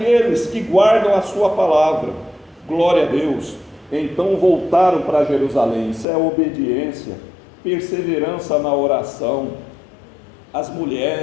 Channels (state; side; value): drops out; right; at 6.1 s